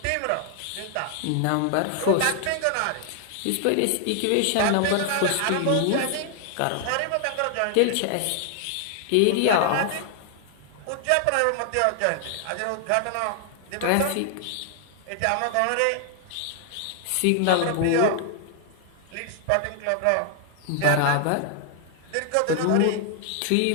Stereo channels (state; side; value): different; both; correlation 0.00